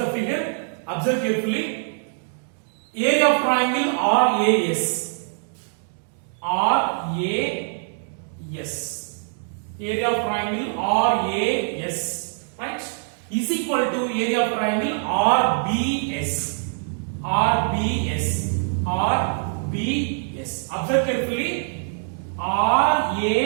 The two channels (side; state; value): left; silent; digital silence